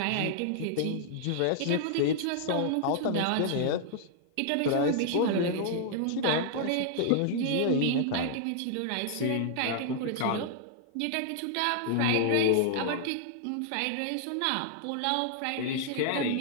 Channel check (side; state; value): both; different; correlation -0.01